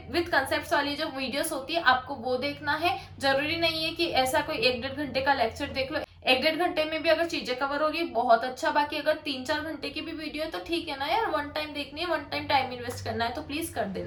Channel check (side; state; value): both; identical; correlation 1.00